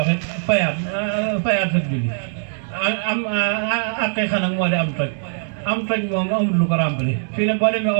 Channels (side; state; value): left; silent; digital silence